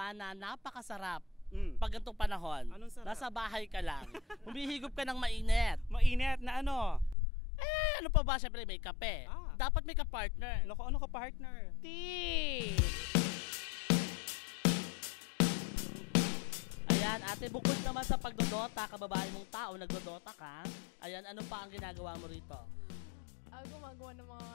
na napakasarap pag ganitong panahon. Anong sarap? Nasa bahay ka lang. Humihigop ka ng mainit. Mainit na ano? Ano pa ba? Siyempre may kape. Dapat may ka-partner. Ano ka partner? Tea! Ayan, ate, bukod naman sa pagdodota, kababae mong tao, nagdodota ka. Ayan, ano pa ang ginagawa mo rito? Gumagawa ng mga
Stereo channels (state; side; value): drops out; right; at 7.2 s